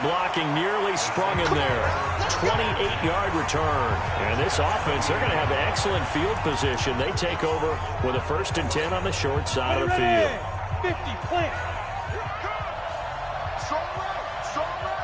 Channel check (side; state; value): both; identical; correlation 1.00